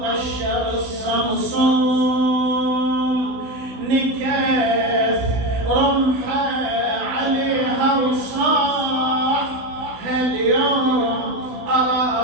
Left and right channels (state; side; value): late; left; 16 ms